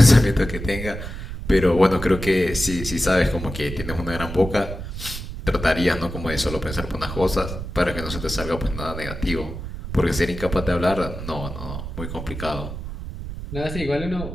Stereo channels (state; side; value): noise; right; rumble, 8 dB below the sound